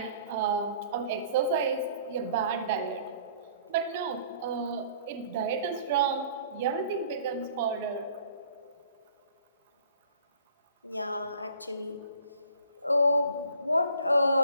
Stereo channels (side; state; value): both; inverted; correlation -0.54